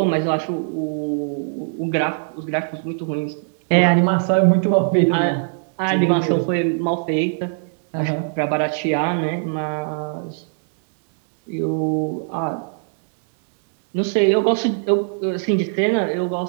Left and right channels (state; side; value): silent; left; digital silence